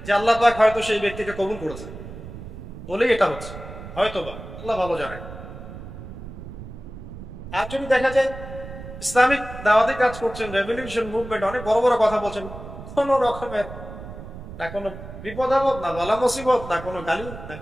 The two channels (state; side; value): noise; right; rumble, 13 dB below the sound